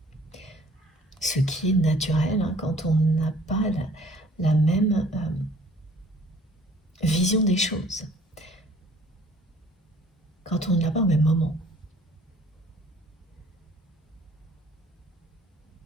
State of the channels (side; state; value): both; normal; correlation 0.54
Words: ce qui est naturel quand on n'a pas la même vision des choses, quand on ne l'a pas au même moment.